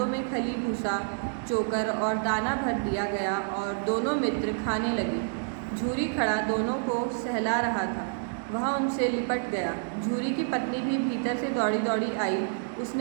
में खली, भूसा, चोकर और दाना भर दिया गया और दोनों मित्र खाने लगे. झूरी खड़ा दोनों को सहला रहा था. वह उनसे लिपट गया. झूरी की पत्नी भी भीतर से दौड़ी दौड़ी आई.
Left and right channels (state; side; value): silent; left; digital silence